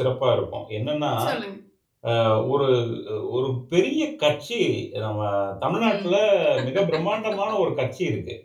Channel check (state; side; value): identical; both; correlation 1.00